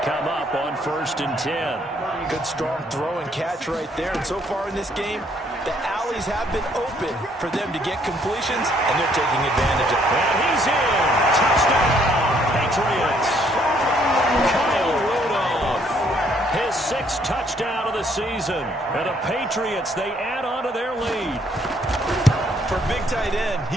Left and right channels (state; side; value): normal; both; correlation 0.67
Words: come up on 1st and 10. Good strong throw and catch right there. And so far in this game, the alleys have been open for them to get completions, and they're taking advantage of it. And he's in. Touchdown, Patriots. Kyle Rudolph, his 6th touchdown of the season. And the Patriots, they add on to their lead. For a big tight end,